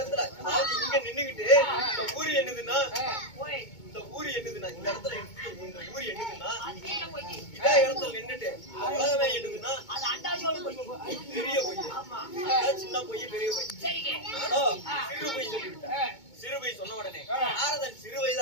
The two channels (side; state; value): right; late; 2.2 ms